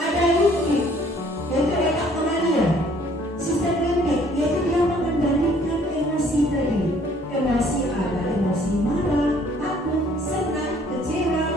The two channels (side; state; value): both; normal; correlation 0.60